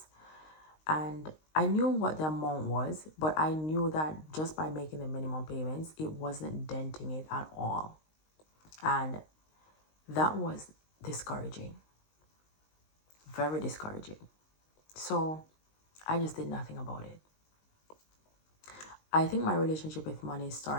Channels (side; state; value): right; late; 19 ms